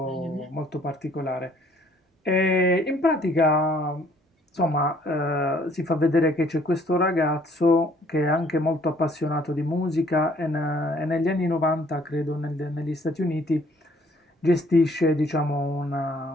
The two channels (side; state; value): both; normal; correlation 0.60